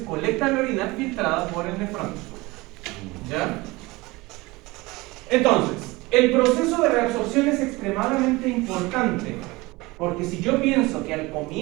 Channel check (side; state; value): left; quieter; 22.2 dB